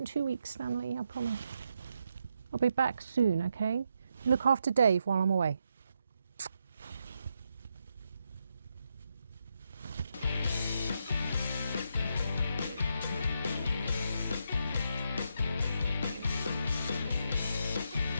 2 weeks, Stanley, I promise. I'll be back soon, okay? Look after Dave while I'm away.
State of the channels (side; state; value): both; inverted; correlation -0.81